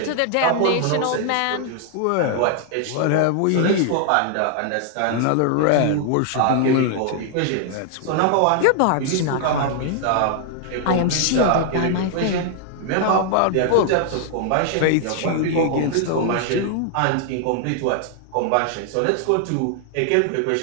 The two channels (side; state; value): both; different; correlation 0.00